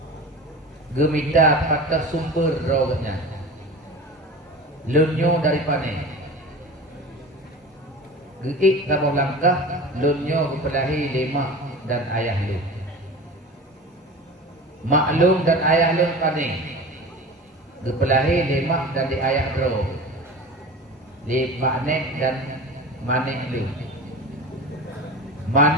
Gemita patah sumber rawanya. Lunyo dari panen. Geik kabau langkah lunyo kepelahi lemak dan ayah lun. Maklum dan ayah lun panen. Kepelahi lemak dan di ayah bro. Lemak nek dan manek lun.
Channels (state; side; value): normal; both; correlation 0.34